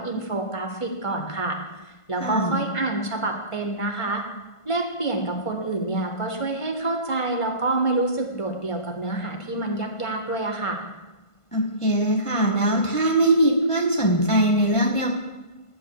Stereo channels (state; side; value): late; right; 1.5 ms